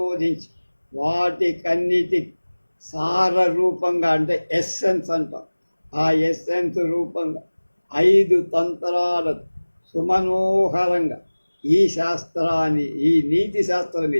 వాటికన్నిటి సార రూపంగా, అంటే ఎస్సెన్స్ అంటాం, ఆ ఎస్సెన్స్ రూపంగా 5 తంత్రాలను సుమనోహరంగా ఈ నీతి శాస్త్రం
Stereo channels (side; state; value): both; inverted; correlation -1.00